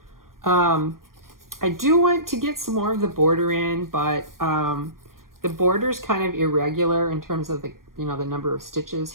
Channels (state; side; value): late; left; 0.91 ms